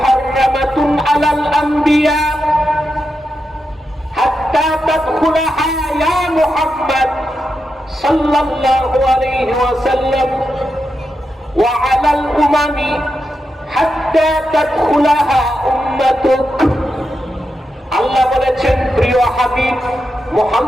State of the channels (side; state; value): both; normal; correlation 0.87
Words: আলাল আম্বিয়া হাত্তা তাদখুলাহা ইয়া মুহাম্মদ সাল্লাল্লাহু আলাইহি ওয়াসাল্লাম ওয়া আলাল উমামি হাত্তা তাদখুলাহা উম্মাতুক। আল্লাহ বলেছেন, প্রিয় হাবিব